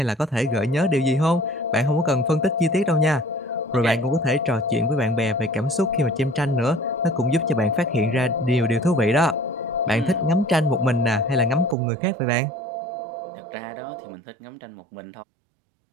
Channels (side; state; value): left; drops out; at 11.8 s